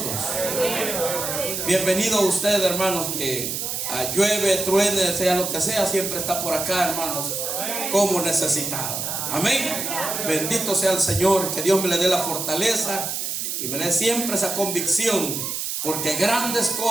Bienvenido a usted, hermanos, que llueve, truene, sea lo que sea, siempre está por acá, hermanos, como necesitado. Amén. Bendito sea el Señor, que Dios me le dé la fortaleza y me le dé siempre esa convicción, porque grandes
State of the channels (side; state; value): right; noise; hiss, 3 dB below the sound